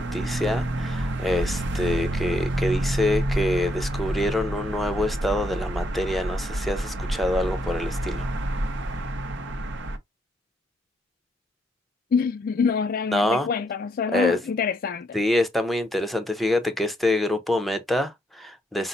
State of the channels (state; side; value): normal; both; correlation 0.75